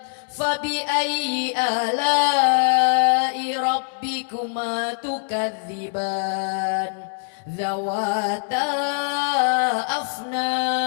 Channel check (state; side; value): silent; right; digital silence